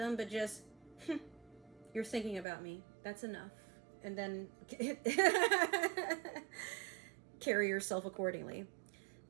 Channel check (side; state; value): left; drops out; at 2.5 s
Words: but just, you're thinking about me. That's enough. And then carry yourself accordingly.